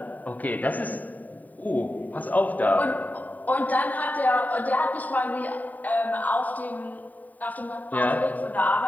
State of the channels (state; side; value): late; right; 0.079 ms